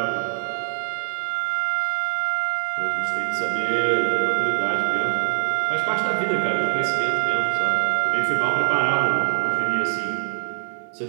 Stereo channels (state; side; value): silent; left; 56 dB below the other